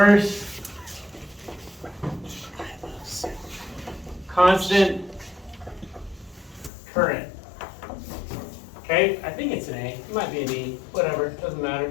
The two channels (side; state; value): right; drops out; at 6.7 s